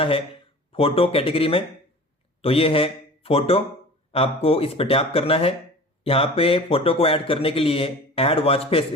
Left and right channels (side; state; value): both; normal; correlation 0.40